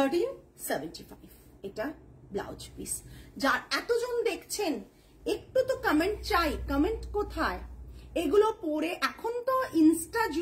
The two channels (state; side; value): identical; both; correlation 1.00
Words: এটা ব্লাউজ পিস। যার এতজন দেখছেন, একটু তো কমেন্ট চাই। কমেন্ট কোথায়? এগুলো পরে, এখন তো ইনস্টা